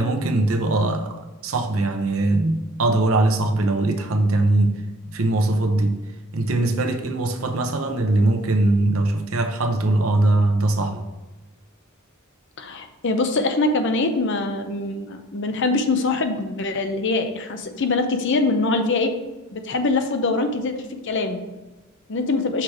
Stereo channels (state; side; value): normal; both; correlation 0.50